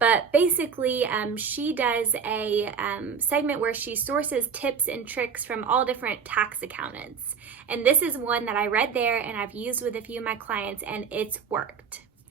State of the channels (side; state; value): left; quieter; 6.5 dB